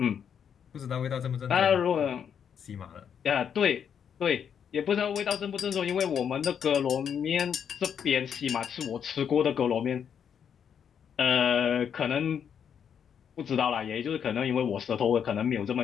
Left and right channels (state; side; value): quieter; right; 7.9 dB